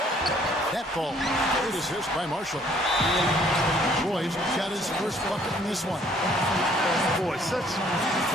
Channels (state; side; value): normal; both; correlation 0.61